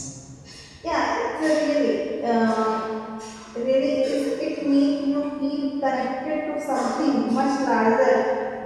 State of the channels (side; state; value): both; identical; correlation 1.00